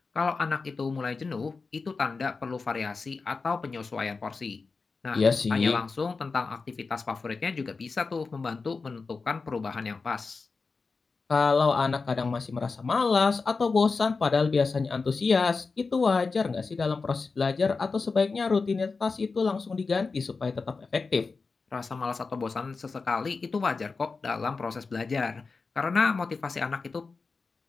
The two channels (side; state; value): right; quieter; 4.4 dB